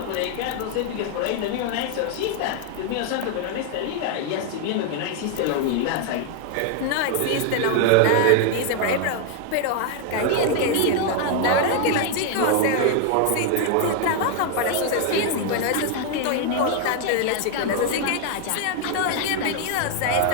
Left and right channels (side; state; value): both; different; correlation 0.00